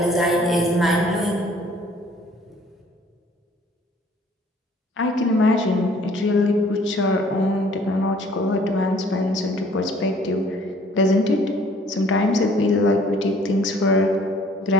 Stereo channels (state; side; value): normal; both; correlation 0.57